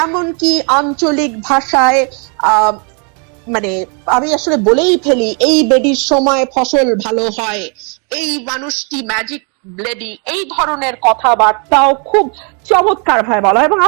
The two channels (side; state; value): left; quieter; 37.0 dB